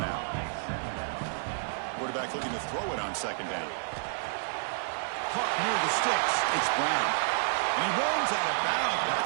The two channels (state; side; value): silent; left; 58 dB below the other